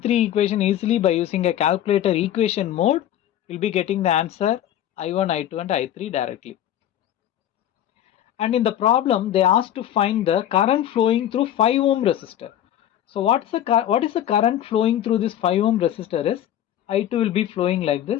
equation easily by using a calculator equation mode. We'll be getting the answer I1, I2 and I3 directly. And in the problem, they asked to find the current flowing through 5 ohm resistor. So what is the current flowing through this 5 ohm resistor is I2 will be flowing like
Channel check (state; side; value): quieter; right; 11.4 dB